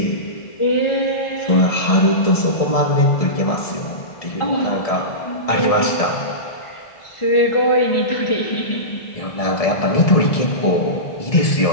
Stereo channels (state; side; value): late; right; 1.7 ms